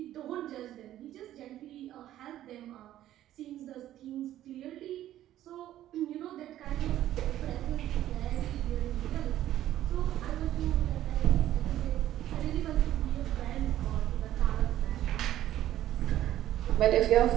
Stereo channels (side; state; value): left; quieter; 12.9 dB